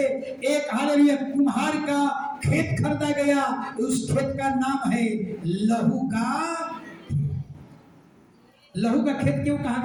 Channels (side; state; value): both; identical; correlation 1.00